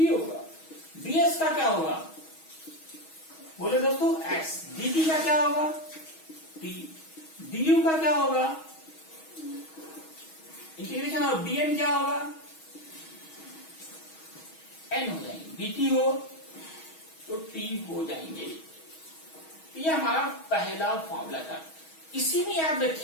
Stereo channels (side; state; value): right; late; 6.3 ms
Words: होगा। ds का क्या होगा? बोले दोस्तों x। dt का क्या होगा? t। du का क्या होगा? इंटीग्रेशन ऑफ dn क्या होगा? n हो जाएंगे। dt हो तो t हो जाएंगे। ये हमारा पहला फॉर्मूला था। इसी में याद